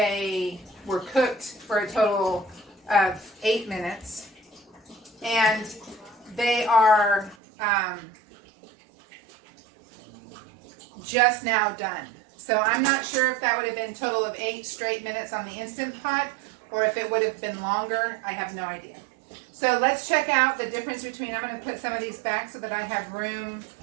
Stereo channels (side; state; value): left; drops out; at 7.4 s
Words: were cooked for a total of 8 minutes, and they are just now done. So I'm not sure if that would have been a total of 8 straight minutes on the Instant Pot, or if it would have been longer. I have no idea. So let's check out the difference between, I'm going to put some of these back so that I have room